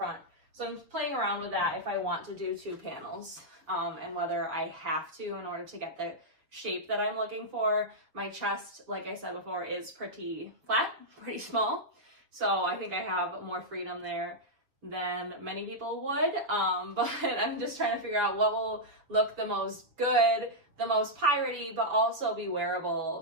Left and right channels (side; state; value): left; late; 6.9 ms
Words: So I'm playing around with that if I want to do 2 panels, and whether I have to in order to get the shape that I'm looking for. My chest, like I said before, is pretty flat, pretty small. So I think I have more freedom there than many people would, but I'm just trying to figure out what will look the most good, the most piratey, but also be